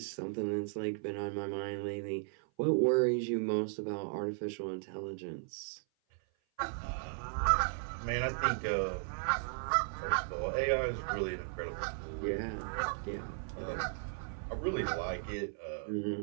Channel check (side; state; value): left; silent; 54 dB below the other